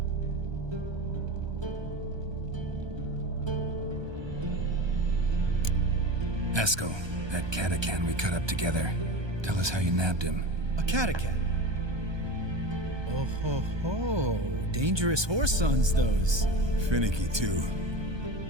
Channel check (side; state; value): left; late; 1.2 ms